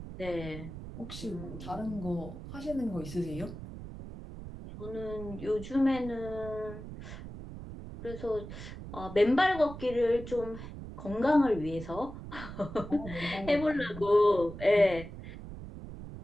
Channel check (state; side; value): noise; right; rumble, 11 dB below the sound